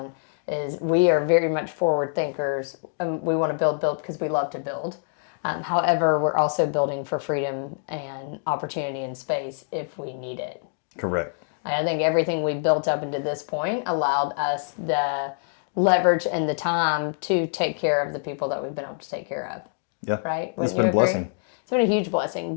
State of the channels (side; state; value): right; silent; digital silence